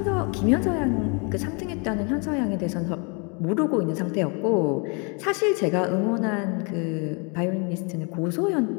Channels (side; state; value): right; quieter; 34.1 dB